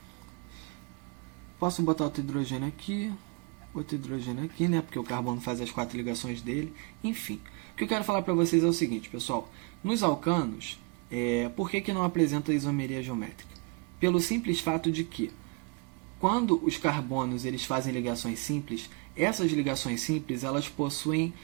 Posso botar outro hidrogênio aqui, né? Porque o carbono faz as 4 ligações dele. Enfim, o que eu quero falar para vocês é o seguinte, pessoal. Nos alcanos, por que não apresenta isomeria geométrica? Pelo simples fato de que, quando os carbonos eles fazem ligações simples, essas ligações simples elas possuem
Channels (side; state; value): left; quieter; 31.3 dB